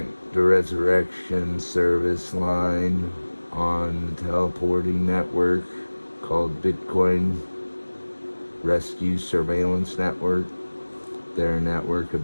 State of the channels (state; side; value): inverted; both; correlation -1.00